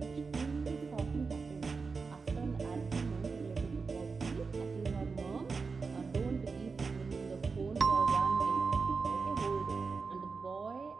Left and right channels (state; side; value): quieter; left; 4.7 dB